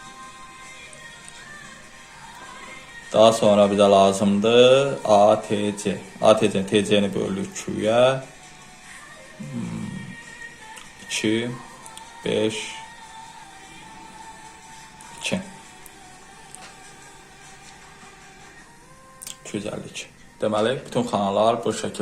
Daha sonra bize lazımdır ATC. ATC, TC'ni bölürük Q'ya. 2, 5, 2. 252. Deməli, bütün kanallar bu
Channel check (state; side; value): identical; both; correlation 1.00